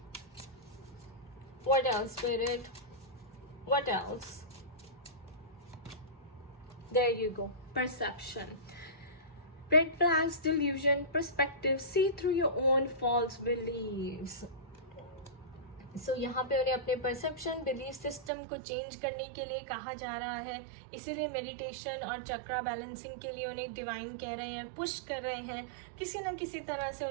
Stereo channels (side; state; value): left; drops out; at 18.3 s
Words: What else, Spirit? What else? There you go. Perception. Red flags, delusion, perspective. See through your own false beliefs. So यहाँ पे उन्हें अपने परसेप्शन, बिलीफ सिस्टम को चेंज करने के लिए कहा जा रहा है। इसीलिए मेडिटेशन और चक्रा बैलेंसिंग के लिए उन्हें डिवाइन कह रहे हैं, पुश कर रहे हैं। किसी न किसी तरह से